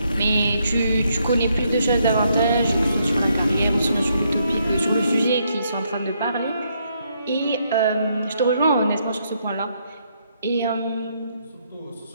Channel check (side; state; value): both; inverted; correlation -0.75